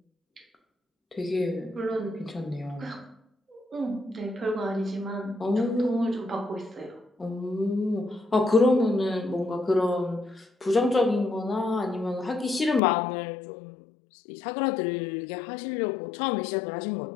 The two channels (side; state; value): right; drops out; at 12.8 s